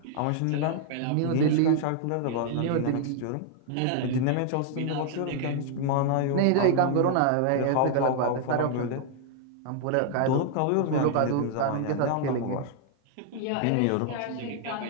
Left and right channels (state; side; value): different; both; correlation -0.01